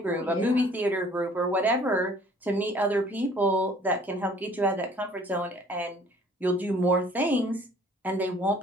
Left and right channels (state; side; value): normal; both; correlation 0.54